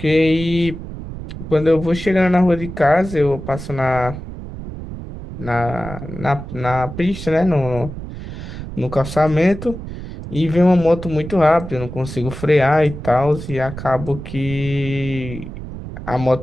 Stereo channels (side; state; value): right; noise; rumble, 10 dB below the sound